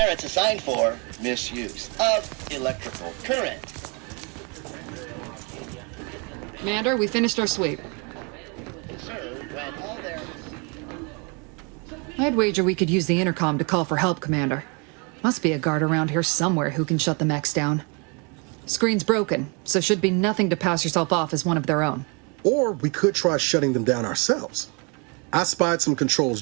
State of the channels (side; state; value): left; quieter; 32.7 dB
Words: assigned for misuse of electrical current. Commander, we finished our sweep. Sir, when all their... I'd wager we could use the intercom to call for help, Commander. Must be a guard around here somewhere who can shut the mechs down. Screen's broken, so should be nothing to pass yourself off as one of their own. Or we could try shutting them down ourselves. I spied some controls